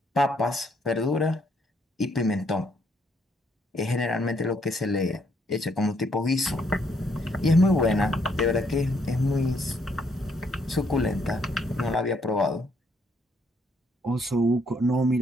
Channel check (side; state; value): both; normal; correlation 0.71